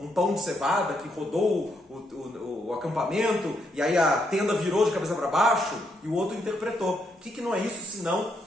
pão de cevada que rodou o acampamento, e aí a tenda virou de cabeça para baixo, e o outro interpretou. O que não é isso senão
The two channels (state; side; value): normal; both; correlation 0.77